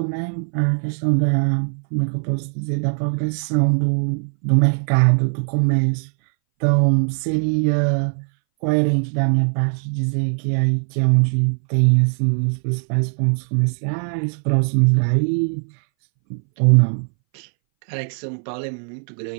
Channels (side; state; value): left; silent; 63 dB below the other